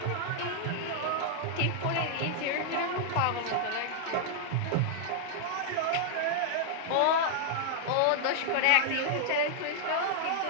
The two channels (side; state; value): both; different; correlation -0.01